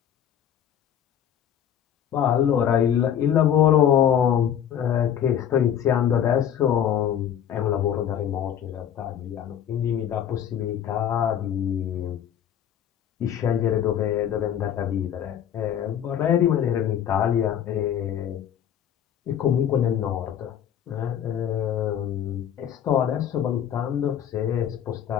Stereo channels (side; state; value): right; quieter; 9.6 dB